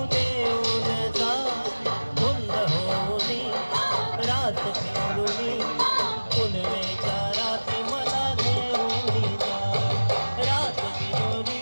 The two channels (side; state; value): both; inverted; correlation -1.00